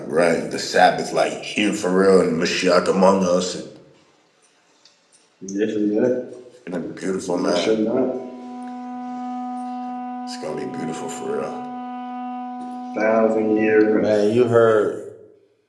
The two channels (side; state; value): both; identical; correlation 1.00